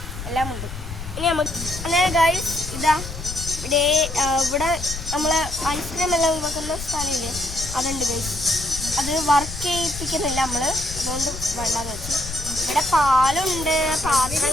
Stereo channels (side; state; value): left; noise; rumble, 9 dB below the sound